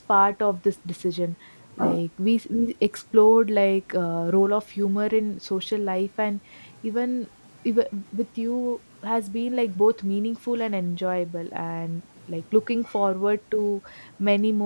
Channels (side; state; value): both; inverted; correlation -1.00